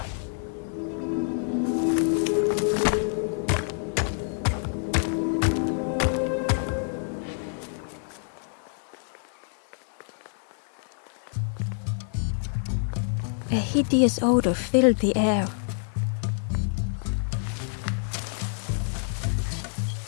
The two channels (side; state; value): right; silent; digital silence